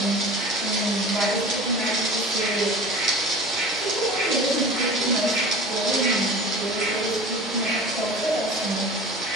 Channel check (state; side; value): normal; both; correlation 0.38